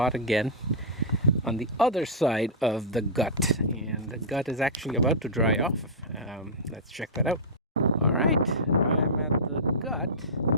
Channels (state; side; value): normal; both; correlation -0.13